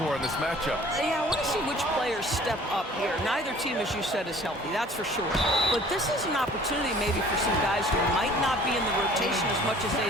in this matchup? Yeah, I want to see which players step up here. Neither team, as you said, is healthy, that's for sure. But this is an opportunity maybe for some guys who might not be in the rotation as much as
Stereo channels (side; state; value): both; normal; correlation 0.51